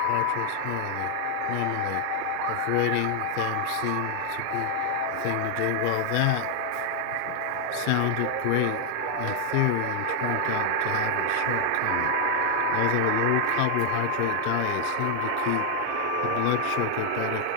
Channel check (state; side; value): different; both; correlation 0.00